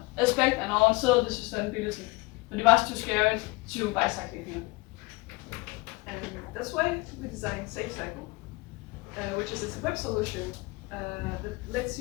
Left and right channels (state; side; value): quieter; right; 24.7 dB